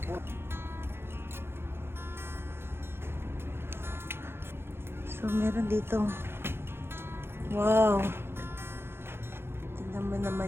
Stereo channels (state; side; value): late; left; 0.11 ms